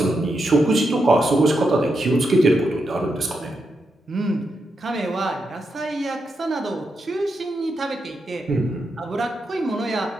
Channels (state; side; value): normal; both; correlation 0.84